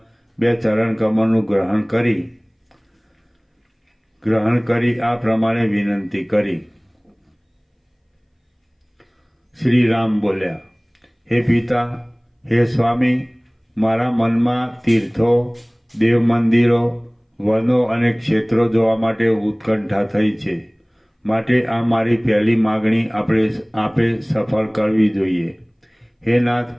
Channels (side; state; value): both; identical; correlation 1.00